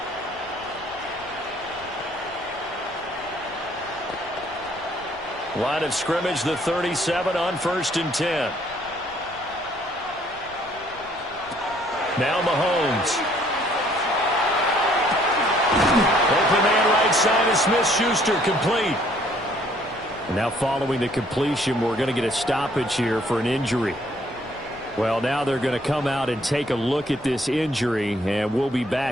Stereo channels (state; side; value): noise; left; rumble, 24 dB below the sound